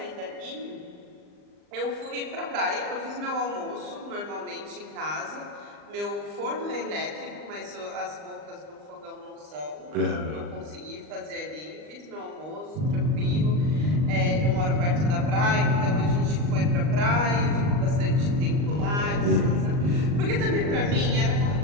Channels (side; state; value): left; late; 39 ms